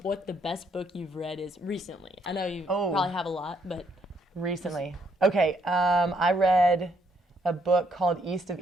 the best book you've read is recently. I know you probably have a lot, but recently. Okay, I read a book called East of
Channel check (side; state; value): both; normal; correlation 0.71